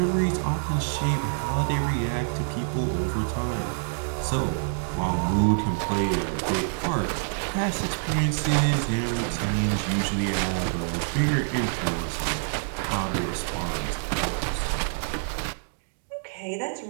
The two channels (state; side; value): silent; left; digital silence